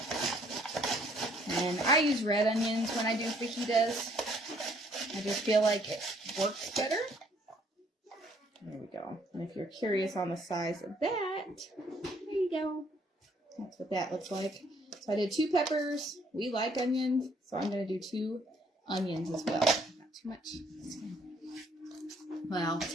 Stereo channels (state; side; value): normal; both; correlation 0.64